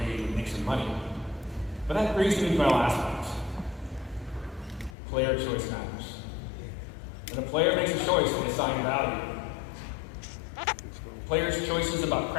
and make some money. But that brings me to my last point. Player choice matters. When a player makes a choice, they assign value. Players' choices about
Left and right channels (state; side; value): drops out; right; at 5.0 s